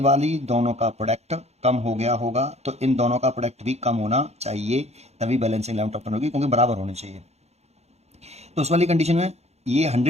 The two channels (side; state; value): left; late; 0.31 ms